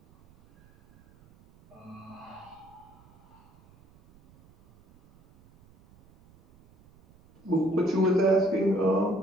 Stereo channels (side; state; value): right; noise; rumble, 28 dB below the sound